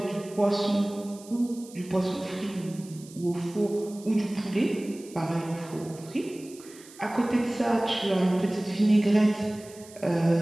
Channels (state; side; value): noise; right; hiss, 21 dB below the sound